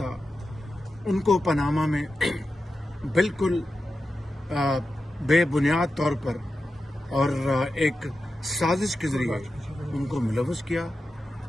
ان کو پاناما میں بالکل بے بنیاد طور پر اور ایک سازش کے ذریعے ان کو ملوث کیا،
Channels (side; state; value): both; normal; correlation 0.91